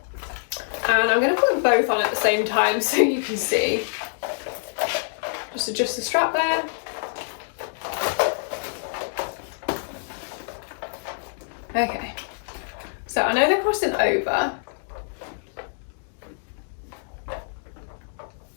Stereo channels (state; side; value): silent; right; 61 dB below the other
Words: And I'm going to put them both on at the same time so you can see. Just adjust the strap there. Okay, so I know they're crossing over,